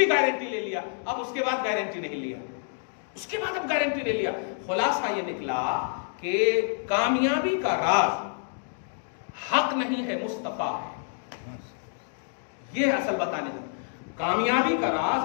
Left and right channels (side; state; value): right; silent; 60 dB below the other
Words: گارنٹی لے لیا. اب اس کے بعد گارنٹی نہیں لیا، اس کے بعد اب گارنٹی لے لیا. خلاصہ یہ نکلا کہ کامیابی کا راز حق نہیں ہے، مصطفیٰ ہے. یہ اصل بتانے کا کامیابی کا